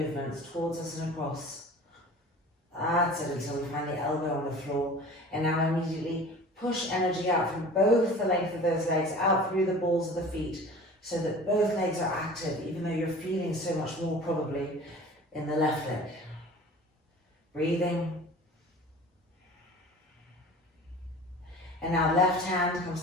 towards us and across. That's it, until we find the elbow on the floor. And now immediately push energy out from both the length of those legs, out through the balls of the feet, so that both legs are active, even though you're feeling so much more probably in the left leg. Breathing. And now left hand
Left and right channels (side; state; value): both; normal; correlation 0.41